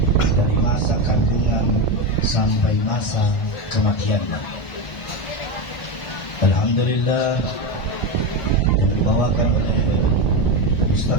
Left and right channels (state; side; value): late; right; 1.4 ms